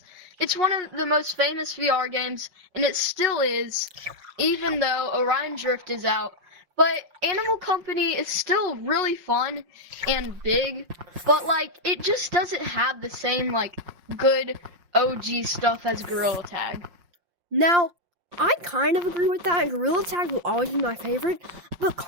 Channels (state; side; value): late; left; 5.7 ms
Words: one of the most famous VR games, and it still is, even though Orion Drift is out. But Animal Company is still really fun and big, but like it just doesn't have the same like good OG stuff as Gorilla Tag. Now, I kind of agree with that. Gorilla Tag will always be my favorite, but